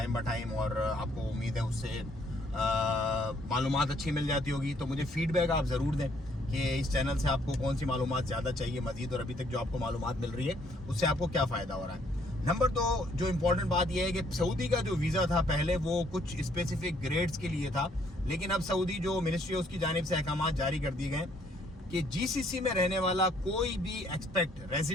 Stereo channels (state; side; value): normal; both; correlation 0.66